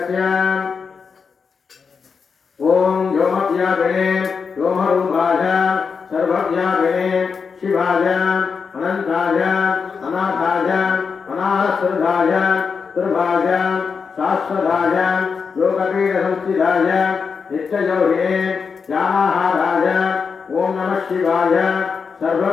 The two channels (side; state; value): right; quieter; 5.7 dB